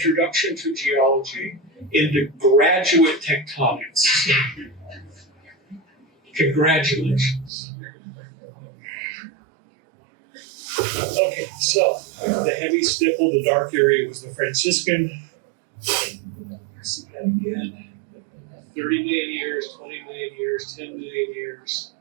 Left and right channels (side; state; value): left; drops out; at 7.5 s